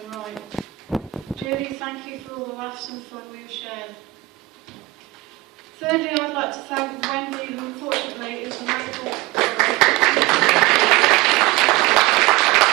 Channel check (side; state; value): left; quieter; 19.1 dB